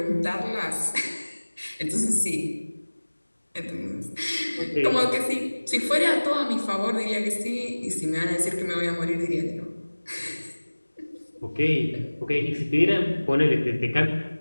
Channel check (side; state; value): both; inverted; correlation -1.00